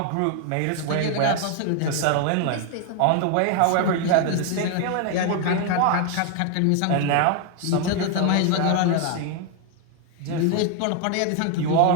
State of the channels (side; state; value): both; different; correlation 0.01